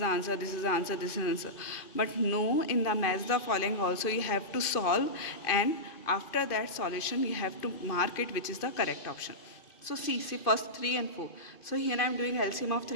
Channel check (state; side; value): late; right; 2.5 ms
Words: answer, this is the answer, this is the answer. But no, in the match the following also you have to solve, and after that solution you have to mark it which is the correct option. So see first 3 and 4. So here I am doing LCM of